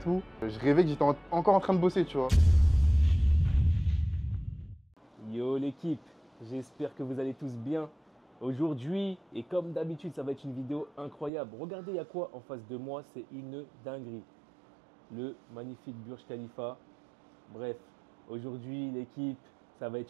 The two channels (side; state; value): left; drops out; at 11.3 s